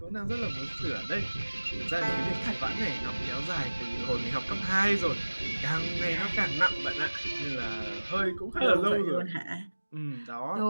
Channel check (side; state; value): both; inverted; correlation -1.00